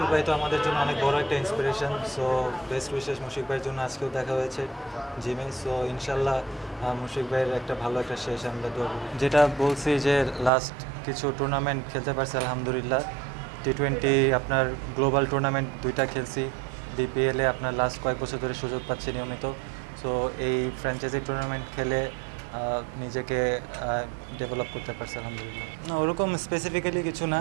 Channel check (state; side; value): drops out; left; at 10.5 s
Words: ভাই তো আমাদের জন্য অনেক বড় একটা inspiration. So best wishes Mushfiq ভাইয়ের জন্য আজকেও দেখা হয়েছে জিমে। সো ইনশাল্লাহ মুশফিক ভাইয়ের একটা ভালো একটা শেষ আমরা দৌড়, যেটা বলছি যে লাস্ট কিছু টুর্নামেন্ট খেলতে পারছি আলহামদুলিল্লাহ। T20 আপনার গ্লোবাল টুর্নামেন্ট 2টা খেলছি, বিপিএলে আপনার লাস্ট কয়েক বছর ধরে সুযোগ পাচ্ছি নিয়মিত। সো এই ফ্র্যাঞ্চাইজি টুর্নামেন্ট খেলে নিজেকে ডেভেলপ করতে পারছি আলহামদুলিল্লাহ। না, ওরকম স্পেসিফিক্যালি কিছু না,